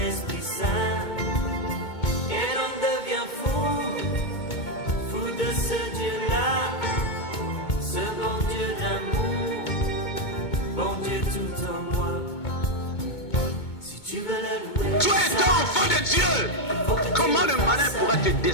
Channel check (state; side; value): late; right; 2.2 ms